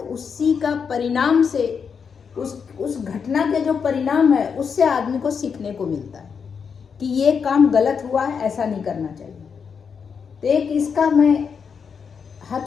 उसी का परिणाम से उस घटना के जो परिणाम है उससे आदमी को सीखने को मिलता है कि ये काम गलत हुआ है, ऐसा नहीं करना चाहिए। तो एक इसका मैं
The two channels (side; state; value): right; quieter; 6.3 dB